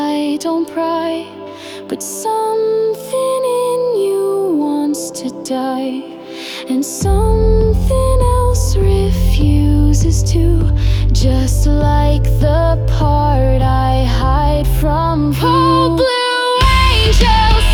don't pry, but something in you wants to die, and something else refuses to. Just like the part I hide from you. Oh, blue angel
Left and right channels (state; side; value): identical; both; correlation 1.00